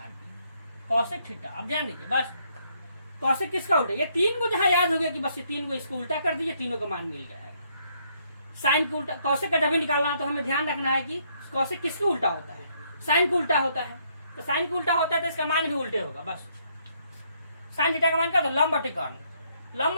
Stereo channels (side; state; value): both; inverted; correlation -0.71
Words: पी। कॉसेक थीटा, अब ध्यान दीजिए, बस कॉसेक किसका उल्टा, ये तीन को जहां याद हो गया कि बस ये तीन को इसको उल्टा कर दीजिए, तीनों का मान मिल जाएगा। साइन को उल्टा, कॉसेक का जब भी निकालना तो हमें ध्यान रखना है कि कॉसेक किसके उल्टा होता है, साइन को उल्टा होता है। तो साइन को उल्टा होता है तो इसका मान भी उल्टे होगा। बस साइन थीटा का मान क्या होता है, लंब बटे कर्ण, लंब